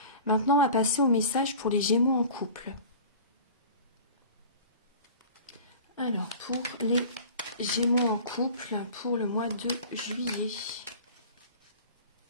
Maintenant, on va passer au message pour les Gémeaux en couple. Alors, pour les Gémeaux en couple, pour le mois de juillet.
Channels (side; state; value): both; inverted; correlation -0.41